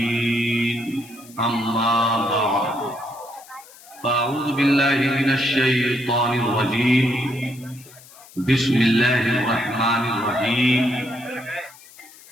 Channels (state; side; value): noise; left; hiss, 22 dB below the sound